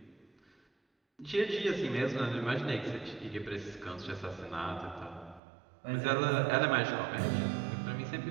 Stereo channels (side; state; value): left; drops out; at 5.4 s